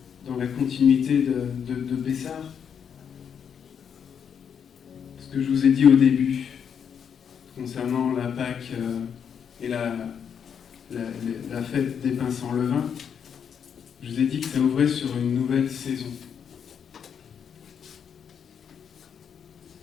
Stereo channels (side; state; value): right; quieter; 7.6 dB